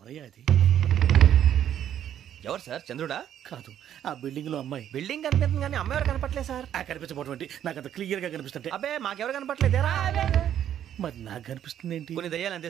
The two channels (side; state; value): left; quieter; 10.3 dB